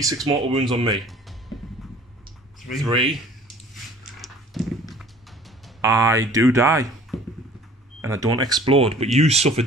mortal wounds on me. 3. I do die. And I don't explode, but you suffer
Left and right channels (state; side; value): normal; both; correlation 0.51